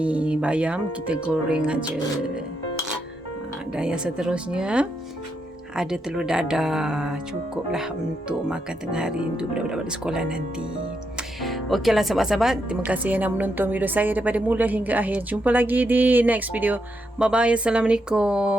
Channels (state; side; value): normal; both; correlation 0.81